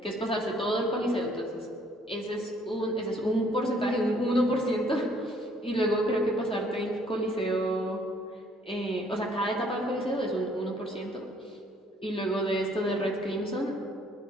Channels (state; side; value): normal; both; correlation 0.63